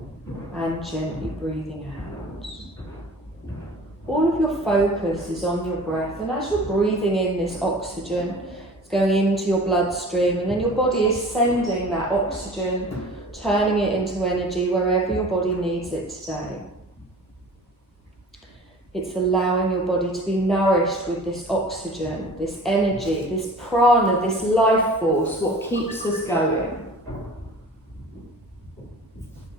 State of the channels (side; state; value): both; normal; correlation 0.43